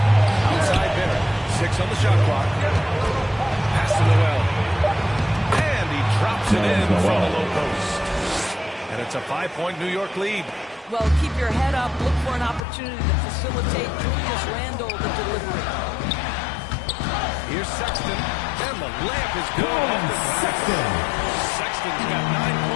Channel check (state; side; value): drops out; right; at 12.6 s